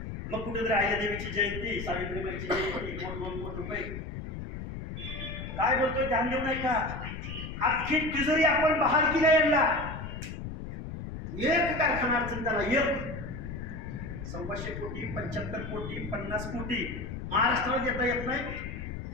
मग कुठेतरी अहिल्यादेवीची जयंती, सावित्रीबाईची जयंती, 2 कोटी रुपये. काय बोलतोय? ध्यान देऊ नाही का? अख्खी तिजोरी आपण बहाल केल्या यांना. एक कारखाना अडचण त्याला, एक 100 कोटी, 75 कोटी, 50 कोटी महाराष्ट्राला देता येत नाही.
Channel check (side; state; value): left; noise; rumble, 8 dB below the sound